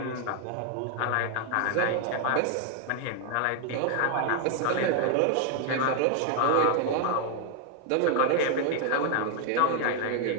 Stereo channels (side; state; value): both; different; correlation 0.00